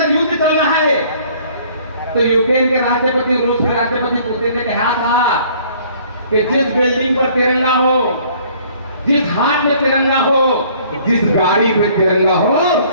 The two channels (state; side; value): inverted; both; correlation -0.57